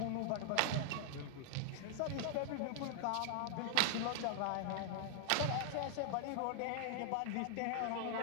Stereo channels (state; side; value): different; both; correlation 0.00